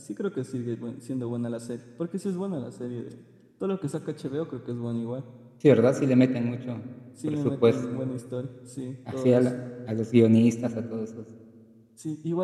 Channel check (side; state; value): both; identical; correlation 1.00